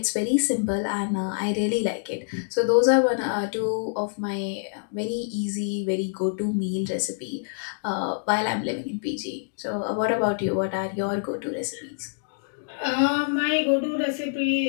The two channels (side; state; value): right; silent; digital silence